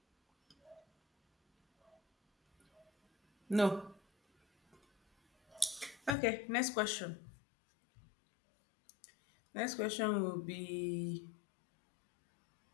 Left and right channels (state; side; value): drops out; right; at 6.2 s